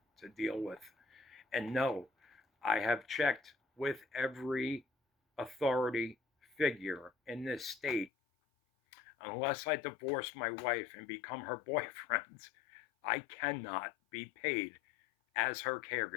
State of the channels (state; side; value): drops out; right; at 8.1 s